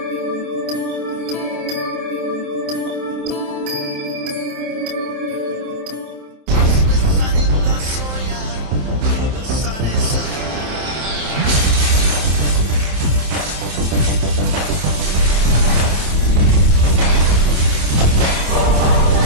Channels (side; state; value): left; late; 27 ms